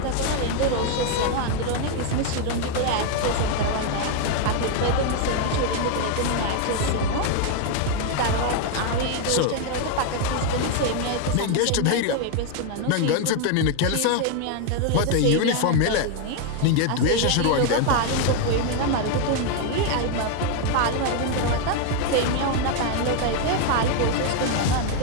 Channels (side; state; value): both; different; correlation 0.01